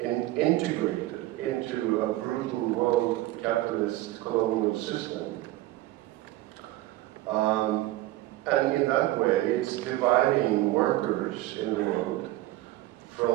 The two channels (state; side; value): quieter; left; 16.6 dB